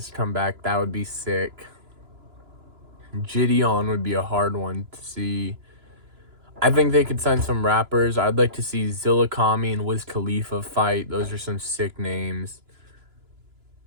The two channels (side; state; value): left; late; 2.9 ms